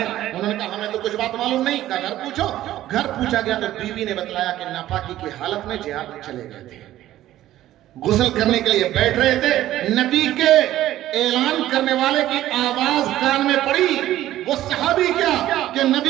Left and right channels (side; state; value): left; quieter; 13.9 dB